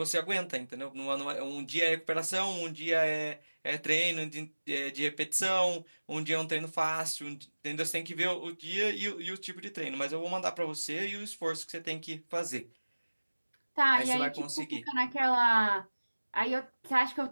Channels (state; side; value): inverted; both; correlation -1.00